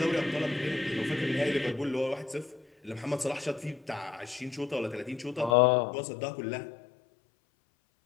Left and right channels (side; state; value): right; drops out; at 5.6 s